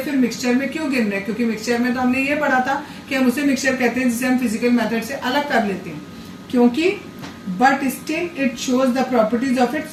मिक्सचर में क्यों गिन रहे हैं? क्योंकि मिक्सचर में तो हमने ये पढ़ा था कि हम उसे मिक्सचर कहते हैं जिसे हम फिजिकल मेथड से अलग कर लेते हैं। क्योंकि but still it shows the properties of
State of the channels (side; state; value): both; identical; correlation 1.00